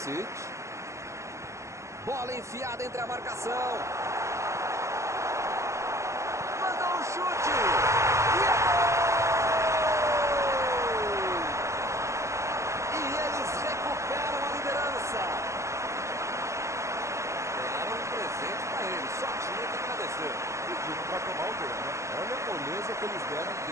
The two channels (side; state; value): left; late; 0.14 ms